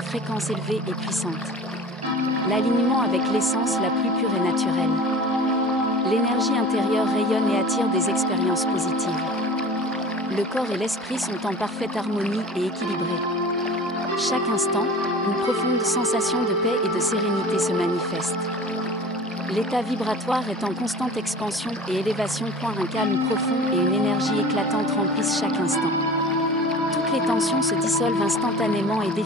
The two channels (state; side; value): normal; both; correlation 0.40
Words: élevée et puissante. L'alignement avec l'essence la plus pure et naturelle. L'énergie intérieure rayonne et attire des expériences positives. Le corps et l'esprit sont en parfaite harmonie et équilibrés. Chaque instant, une profonde sensation de paix et de sérénité se manifeste. L'état vibratoire est en constante expansion et élévation. Un calme profond et une énergie éclatante remplissent chaque instant. Toutes les tensions se dissolvent instantanément et